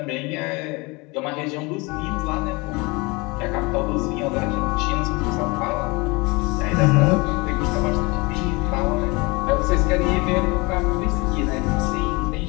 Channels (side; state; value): right; quieter; 26.0 dB